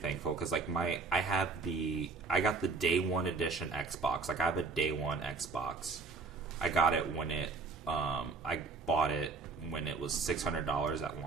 because, like, I got the day one edition Xbox. Like, I have a day one Xbox. I got it when I bought it when it was $600 at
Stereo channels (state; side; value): quieter; left; 4.3 dB